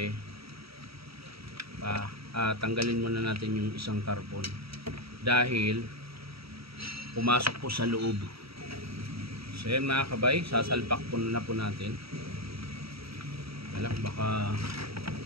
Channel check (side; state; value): left; late; 0.76 ms